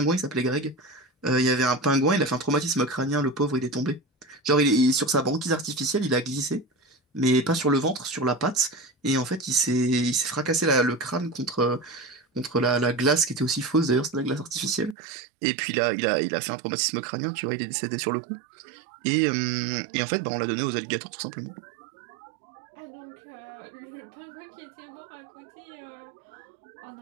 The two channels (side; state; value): left; drops out; at 15.0 s